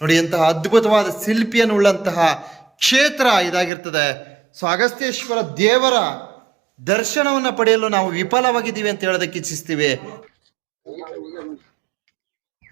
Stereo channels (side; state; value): left; drops out; at 3.7 s